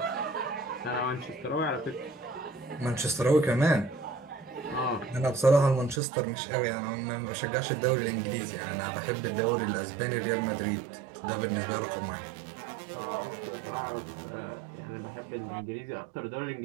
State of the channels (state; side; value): drops out; left; at 6.0 s